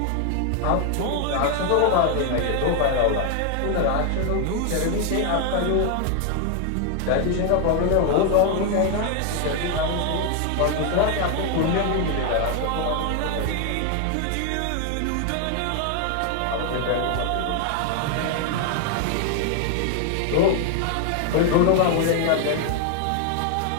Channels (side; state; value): both; different; correlation 0.00